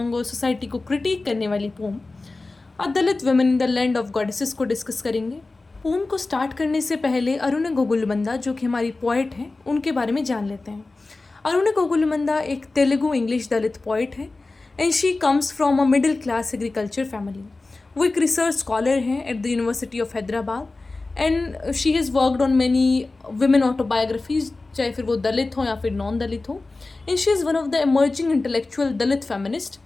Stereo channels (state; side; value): quieter; right; 3.4 dB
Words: और सोसाइटी को क्रिटिक करने वाली poem a Dalit women in the land of goddesses को डिस्कस करेंगे। पोम को स्टार्ट करने से पहले अरुण गोगुलमंदा, जो कि हमारी पोइट हैं, उनके बारे में जान लेते हैं। अरुण गोगुलमंदा एक तेलुगु इंग्लिश दलित पोइट है and she comes from a middle class agriculture family. वो एक रिसर्च स्कॉलर हैं at the university of Hyderabad and she has worked on many women autobiographies, चाहे फिर वो दलित हो या फिर नॉन दलित हो। And she is one of the emerging intellectual Dalit feminist